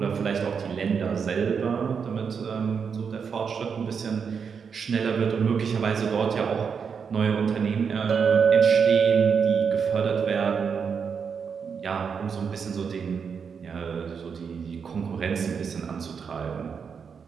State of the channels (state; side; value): quieter; left; 6.3 dB